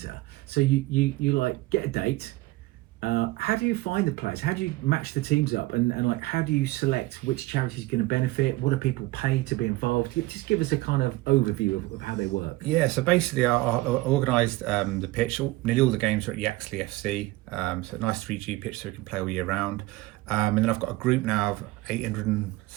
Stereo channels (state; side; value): quieter; left; 19.7 dB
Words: So you get a date. How do you find the players? How do you match the teams up? And how do you select which charity is going to benefit? What do people pay to be involved? Just give us a kind of overview of how they work. Yeah, so basically I organised the pitch. Nearly all the games are at Yaxley FC. So a nice 3G pitch so we can play all year round. And then I've got a group now of